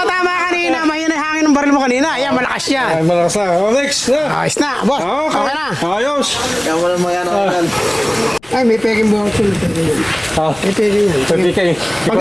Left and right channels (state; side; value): noise; left; rumble, 27 dB below the sound